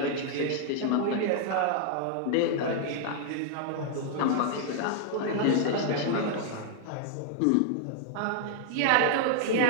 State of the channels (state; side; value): different; both; correlation -0.01